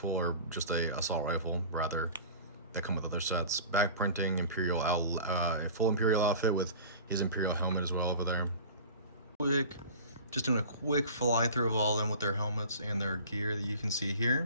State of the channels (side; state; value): both; inverted; correlation -0.40